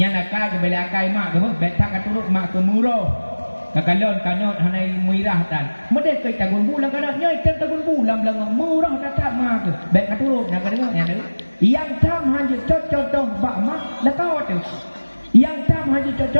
nakal ke bela akai mak ke baik tak katurut mak ke murah. Kakalon kanot hanai muirah tan. Mede ke tagun bulan kada nya tagun bulan belang murah datang mak ke. Baik katurut nak dengar nya. Yang tam hanya contoh ba mak lakau tu. Yang tam hanya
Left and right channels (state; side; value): inverted; both; correlation -1.00